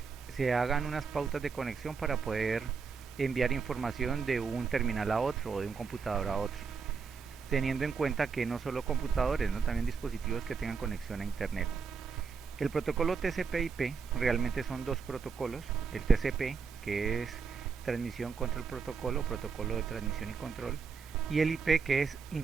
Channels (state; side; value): quieter; left; 5.4 dB